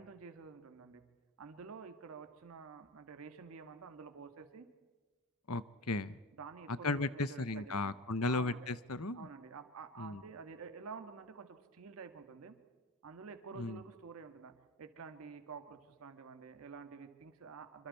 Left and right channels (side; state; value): both; normal; correlation 0.30